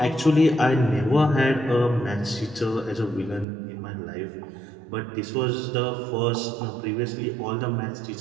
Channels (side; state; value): left; drops out; at 3.5 s